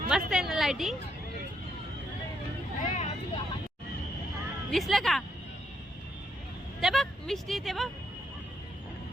मस्त आहे ना लाइटिंग. दिसलं का ते बघ मिष्टी ते बघ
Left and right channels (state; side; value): normal; both; correlation 0.76